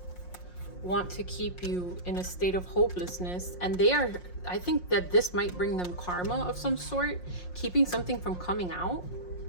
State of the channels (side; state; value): right; late; 5.6 ms